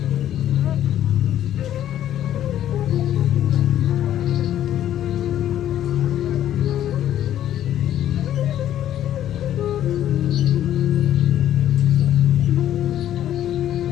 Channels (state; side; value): quieter; right; 11.6 dB